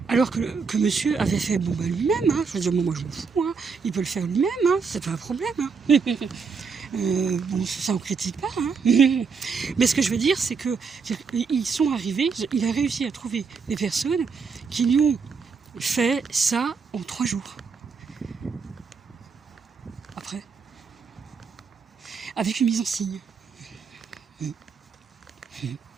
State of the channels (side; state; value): left; quieter; 5.4 dB